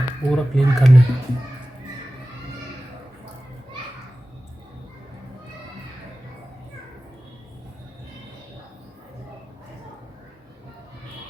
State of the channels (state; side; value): normal; both; correlation 0.96